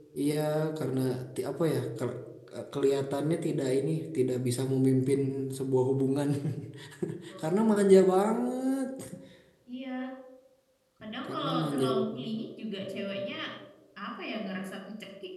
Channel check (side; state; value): both; identical; correlation 1.00